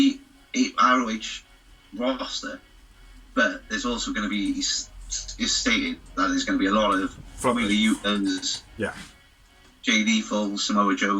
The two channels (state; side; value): identical; both; correlation 1.00